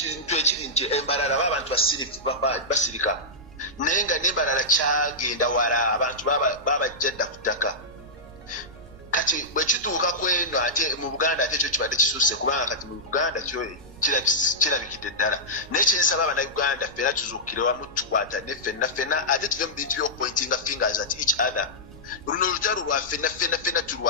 ekirinje embarara abantu basirika nenga nimbarara kyagenda wala abantu babajjadda kutaka kati bwekituuka kweno ate mu Buganda ate ekyo kibadde kisuse kubanga kati mu Buganda kyo kirabikidde ddala nekyensaba abannayuganda ffena tuzuukire wamu tukwata ne ffenna ate tuve mu bintu by'okupointinga fingers at each other. Luno olutalo lwa ffenna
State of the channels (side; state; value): right; noise; rumble, 21 dB below the sound